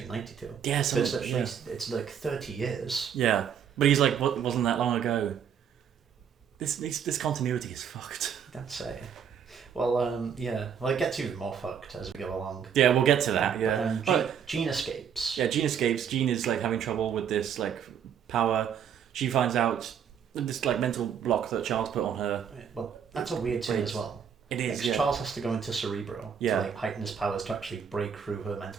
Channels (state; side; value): quieter; left; 7.9 dB